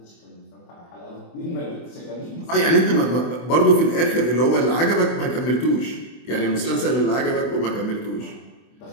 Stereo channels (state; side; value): late; right; 24 ms